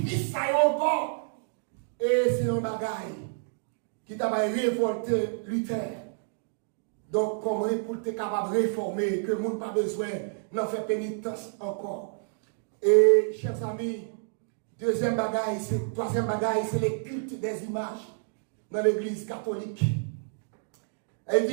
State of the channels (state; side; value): silent; left; digital silence